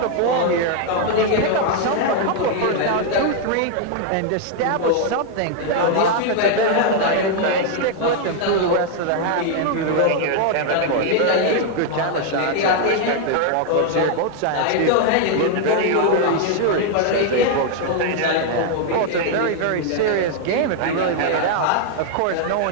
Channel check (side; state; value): both; different; correlation 0.00